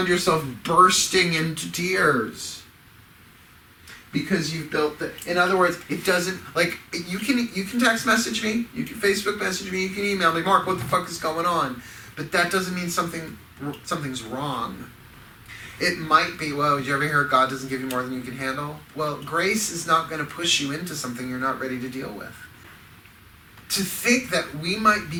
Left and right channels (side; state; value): both; identical; correlation 1.00